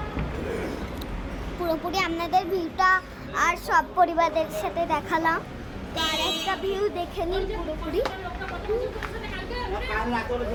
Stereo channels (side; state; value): both; identical; correlation 1.00